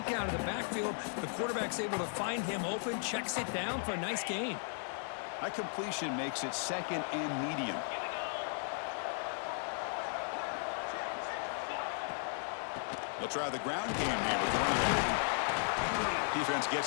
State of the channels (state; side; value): silent; right; 54 dB below the other